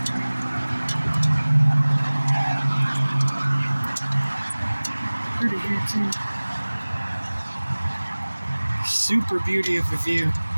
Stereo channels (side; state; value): both; inverted; correlation -1.00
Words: Pretty here too. Super beauty of the view.